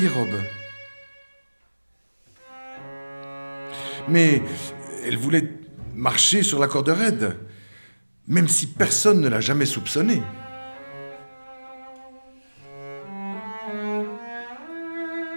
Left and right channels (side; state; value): both; inverted; correlation -1.00